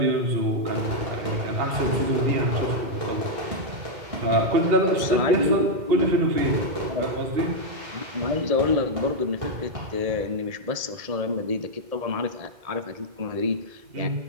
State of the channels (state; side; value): late; left; 1.7 ms